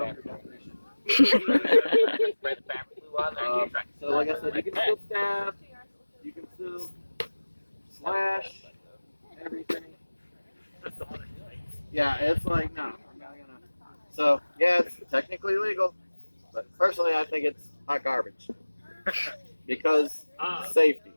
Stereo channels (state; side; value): inverted; both; correlation -1.00